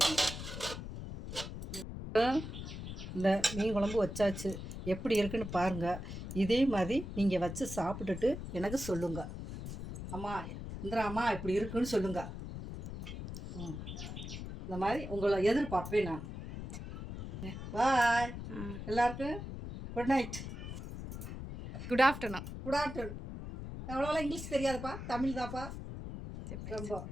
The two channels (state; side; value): noise; left; rumble, 8 dB below the sound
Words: இந்த மீன் குழம்பு வச்சாச்சு. எப்படி இருக்குன்னு பாருங்கள். இதே மாதிரி நீங்கள் வச்சு சாப்பிட்டுட்டு எனக்கு சொல்லுங்கள். அம்மா இந்திராம்மா இப்படி இருக்குன்னு சொல்லுங்கள். இந்த மாதிரி உங்களை எதிர்பார்ப்பேன் நான். பாய் எல்லாருக்கும். Good night, good afternoon. எவ்வளோலாம் இங்கிலீஷ் தெரியாதுப்பா, தமிழ் தான்ப்பா ரொம்ப.